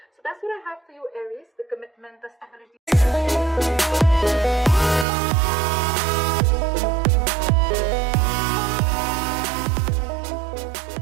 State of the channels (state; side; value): drops out; left; at 5.1 s